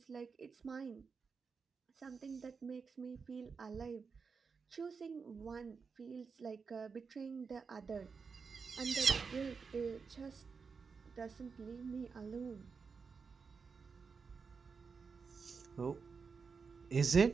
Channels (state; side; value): quieter; left; 5.3 dB